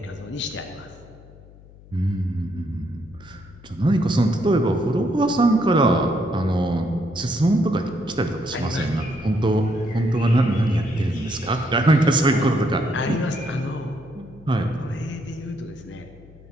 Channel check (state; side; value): noise; left; hum, 22 dB below the sound